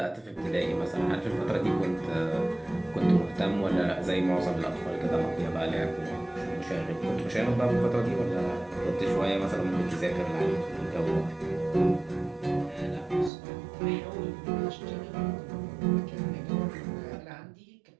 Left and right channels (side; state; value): left; drops out; at 13.3 s